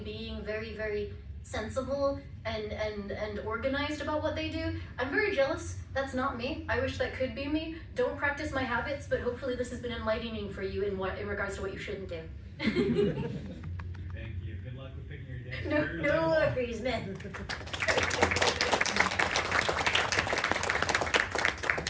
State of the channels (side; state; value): both; identical; correlation 1.00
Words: very, very sensible and organized about what they do. I'm very jealous. That's not me. I wish that could be me. Don't practice my habits, but hopefully this has been enlightening for you in regards to what you shouldn't do. Thank you. Good luck with picking your day. No worries, man.